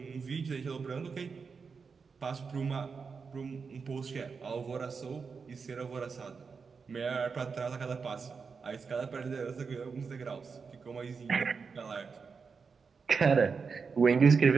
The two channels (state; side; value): quieter; left; 5.3 dB